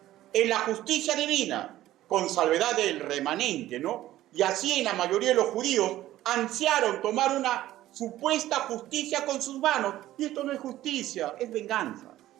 en la justicia divina, con salvedad del remanente, ¿no? Y así en la mayoría de los judíos ansiaron tomar una supuesta justicia con sus manos. Y esto no es justicia, es venganza.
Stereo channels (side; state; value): left; quieter; 14.4 dB